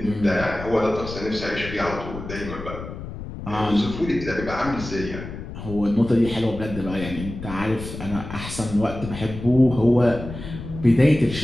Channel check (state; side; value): noise; left; rumble, 10 dB below the sound